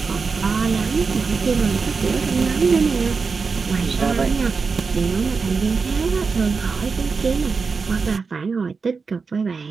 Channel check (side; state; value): left; quieter; 4.9 dB